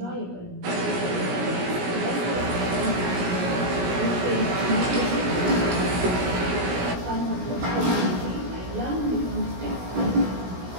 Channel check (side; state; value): left; late; 16 ms